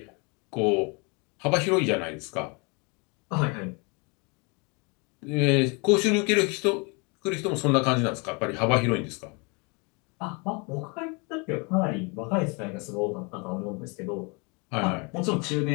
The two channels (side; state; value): right; quieter; 31.2 dB